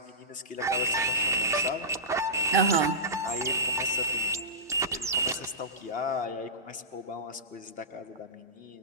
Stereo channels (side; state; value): both; normal; correlation -0.19